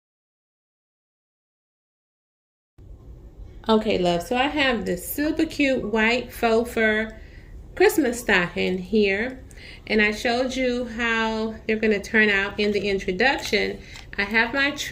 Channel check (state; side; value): identical; both; correlation 1.00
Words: Okay, love, so I have this super cute white faux fur Christmas stocking here, and I showed you how they're going to turn out in the introduction. I have my